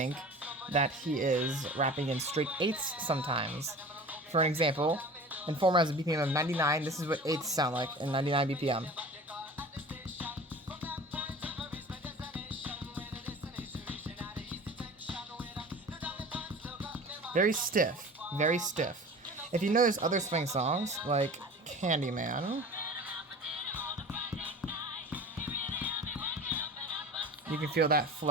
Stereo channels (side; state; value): both; normal; correlation 0.39